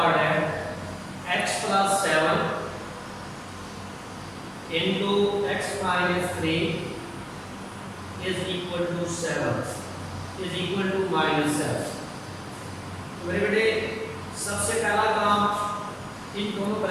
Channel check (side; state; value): both; identical; correlation 1.00